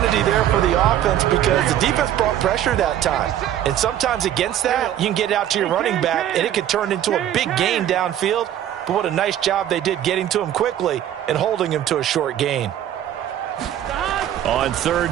there for the offense because the defense brought pressure that time. And sometimes against that, you can get it out to your running back, and it could turn into a big gain downfield. But what a nice job they did getting to him quickly and holding him to a short gain. On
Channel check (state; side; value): quieter; left; 11.3 dB